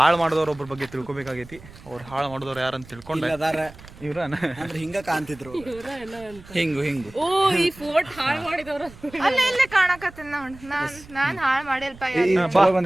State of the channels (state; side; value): noise; right; rumble, 20 dB below the sound